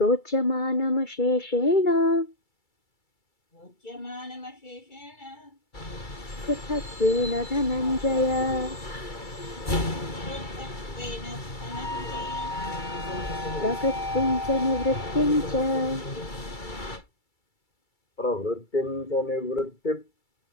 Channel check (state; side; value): late; right; 2.3 ms